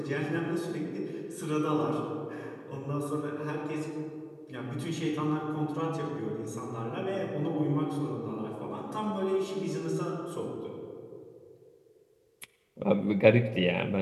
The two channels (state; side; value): identical; both; correlation 1.00